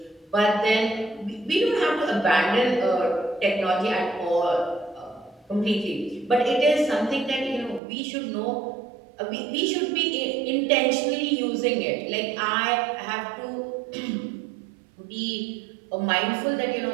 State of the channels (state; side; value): drops out; left; at 7.8 s